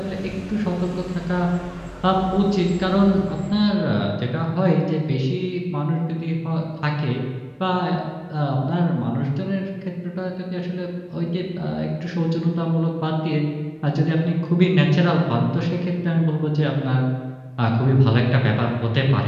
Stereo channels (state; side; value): identical; both; correlation 1.00